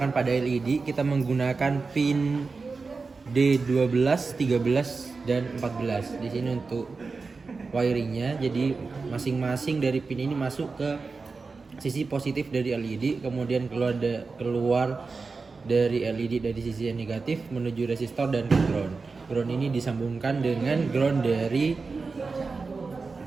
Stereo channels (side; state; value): left; quieter; 4.3 dB